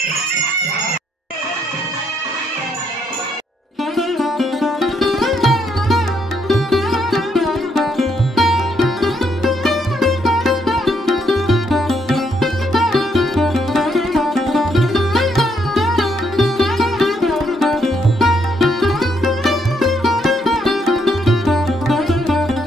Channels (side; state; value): both; normal; correlation 0.74